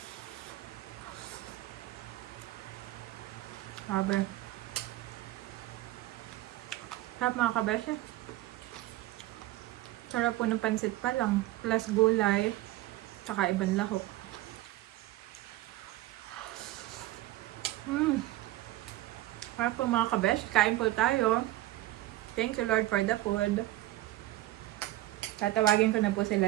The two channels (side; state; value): left; quieter; 16.4 dB